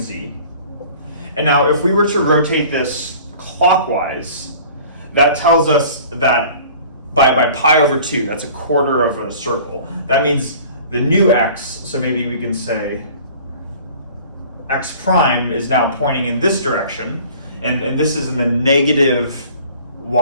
And now if we were to rotate this clockwise, that tells us that by pi over 2, that's a quarter of a circle. That means the new x, so maybe we can say x prime is now pointing in this direction, and this is in the negative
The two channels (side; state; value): both; inverted; correlation -0.47